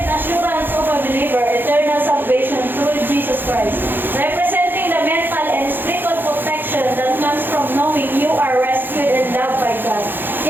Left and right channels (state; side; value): late; left; 0.096 ms